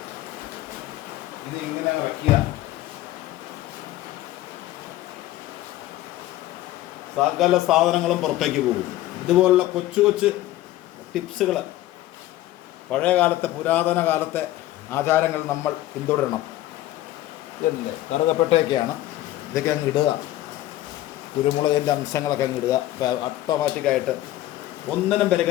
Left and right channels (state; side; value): quieter; right; 15.1 dB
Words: ഇത് ഇങ്ങനെ വയ്ക്കുക. സകല സാധനങ്ങളും പുറത്തേക്ക് പോകും. ഇതുപോലുള്ള കൊച്ചു കൊച്ചു ടിപ്സുകൾ, പഴയ കാലത്തെ പുരാതന കാലത്തെ ആചാരങ്ങൾ നമ്മൾ പിന്തുടരണം. ഇതല്ലേ കറുകപ്പെട്ടൊക്കെയാണ്, ഇതൊക്കെ അങ്ങ് ഇടുക. കുരുമുളകിൻ്റെ അംശങ്ങളൊക്കെ അങ്ങ് ഇടുക. ഓട്ടോമാറ്റിക്കായിട്ട് ഒന്നിനും